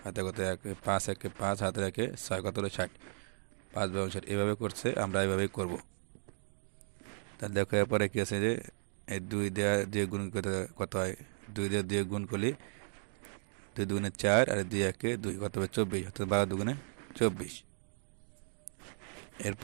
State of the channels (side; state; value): left; silent; digital silence